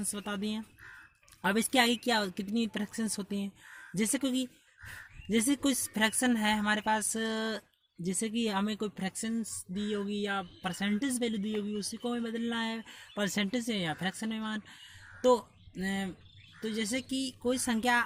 बता दी हैं। अब इसके आगे क्या कितनी फ्रैक्शंस होती हैं? जैसे कोई फ्रैक्शन है हमारे पास, जैसे कि हमें कोई फ्रैक्शंस दी होगी या परसेंटेज वैल्यू दी होगी, उसी को हमें बदलना है परसेंटेज से या फ्रैक्शन में मान। तो जैसे कि कोई संख्या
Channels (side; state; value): both; identical; correlation 1.00